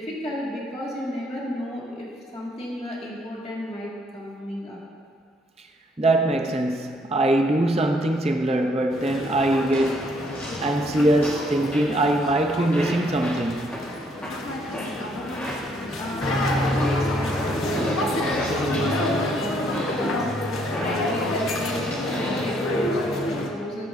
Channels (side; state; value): both; normal; correlation 0.68